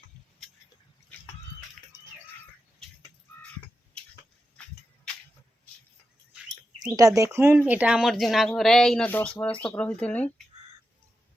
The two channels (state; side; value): normal; both; correlation 0.90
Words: इटा देखुन इटा आमर जूना घर है। इन 10 बरस तक रही